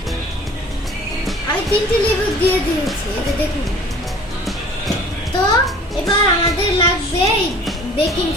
আমি 3টি লেবু দিয়ে দিয়েছি, এই যে দেখুন। তো এবার আমাদের লাগবে বেকিং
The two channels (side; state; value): both; normal; correlation 0.48